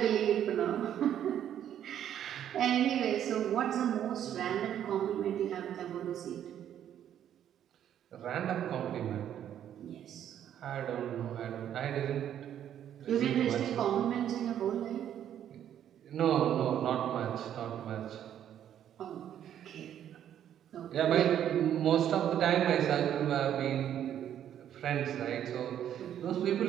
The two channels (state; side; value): quieter; left; 10.2 dB